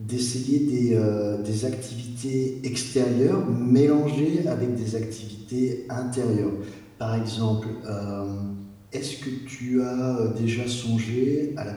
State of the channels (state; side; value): identical; both; correlation 1.00